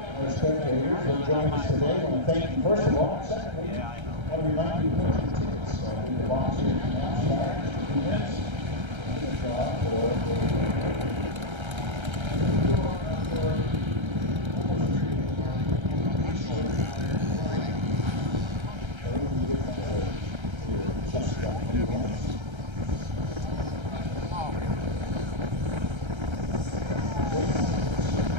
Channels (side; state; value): left; late; 1.3 ms